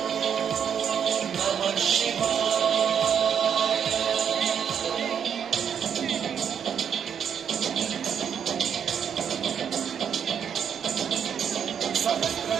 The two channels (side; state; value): left; quieter; 8.0 dB